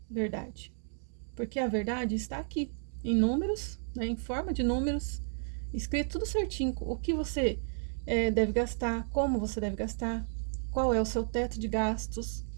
verdade. Porque a verdade está aqui, em números, né, em forma de números, escrito tudo certinho, o que você deve gastar, como você deve gastar, qual é o seu teto de gastos,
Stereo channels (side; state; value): left; silent; digital silence